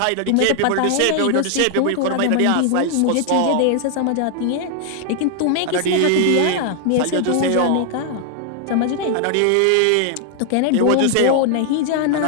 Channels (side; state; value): both; different; correlation 0.00